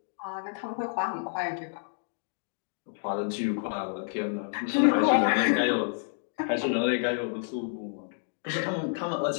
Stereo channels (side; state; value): right; silent; digital silence